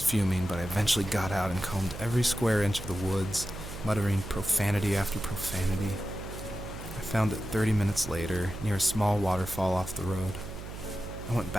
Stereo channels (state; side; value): noise; right; hum, 10 dB below the sound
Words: but I eventually got out and combed every square inch of the woods, muttering profanity after profanity. I found it 30 minutes later, near a small waterfall off the road. I went